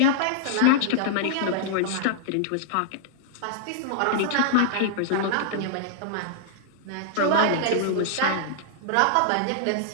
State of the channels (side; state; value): both; different; correlation -0.01